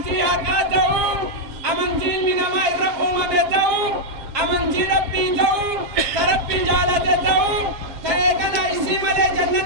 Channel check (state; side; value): late; left; 7.5 ms